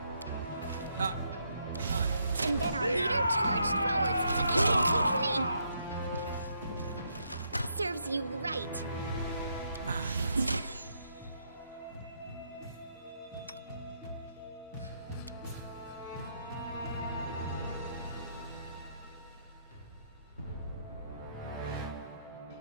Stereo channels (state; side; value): inverted; both; correlation -0.75